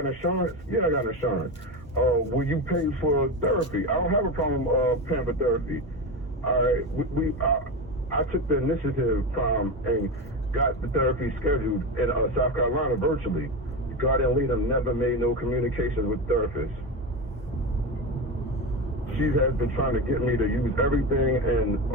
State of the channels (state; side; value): normal; both; correlation 0.18